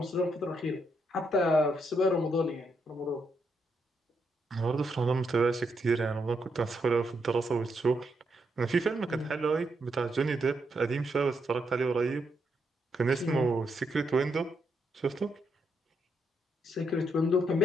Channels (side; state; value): both; normal; correlation 0.79